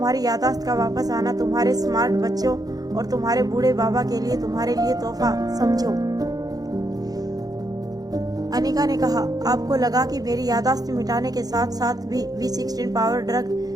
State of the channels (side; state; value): left; late; 0.18 ms